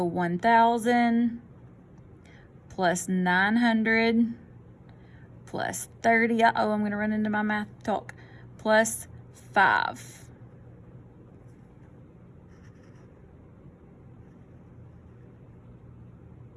1,000 plus 900 plus 30. Uh-oh, I'm going to run into my math talk. Plus 5.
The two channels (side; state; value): both; identical; correlation 1.00